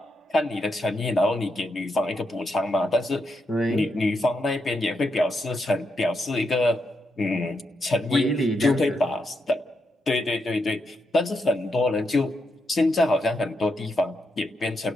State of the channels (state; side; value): normal; both; correlation 0.82